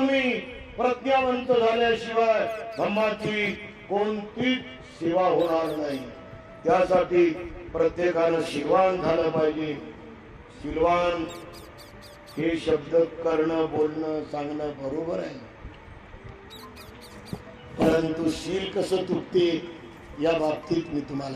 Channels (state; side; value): identical; both; correlation 1.00